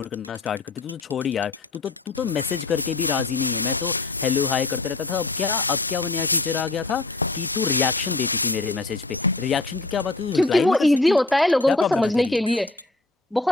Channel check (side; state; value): right; quieter; 3.2 dB